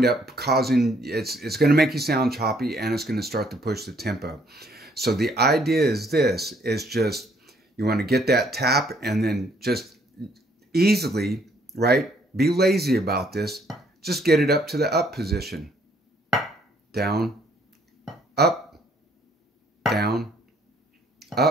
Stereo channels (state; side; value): normal; both; correlation 0.65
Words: up causing, it's going to make you sound choppy, and it's going to start to push the tempo. So the idea is this, is just, you want to get that tap and then just easily, right? Be lazy about this. Just get it up to the up position. Down, up, down,